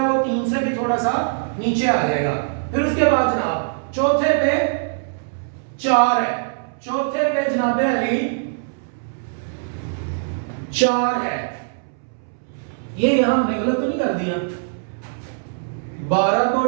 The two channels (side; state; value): left; silent; 64 dB below the other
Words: वो 3 से भी थोड़ा सा नीचे आ जाएगा। फिर उसके बाद जनाब चौथे पे 4 है, चौथे पे जनाब अली 4 है। ये यहां हमने गलत तो नहीं कर दिया, 12 को